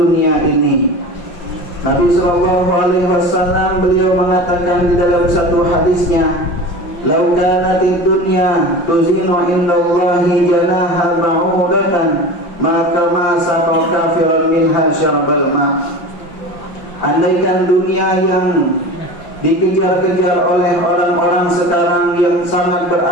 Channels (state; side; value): late; right; 5.6 ms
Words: ini. Nabi sallallahu alaihi wasallam beliau mengatakan di dalam satu hadisnya, "Lau kanatid dunya tuzinu indallahi janaha ba'udatan, maka ma saqa kafiran minha syarbal ma." Andaikan dunia yang dikejar-kejar oleh orang-orang sekarang yang sangat